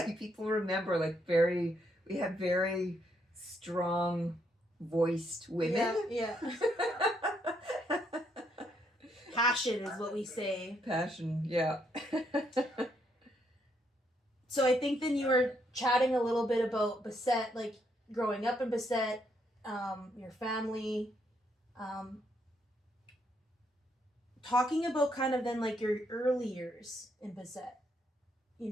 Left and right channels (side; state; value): both; normal; correlation 0.74